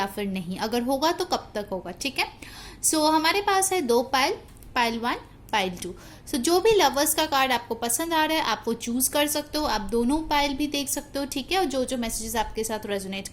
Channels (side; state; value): both; identical; correlation 1.00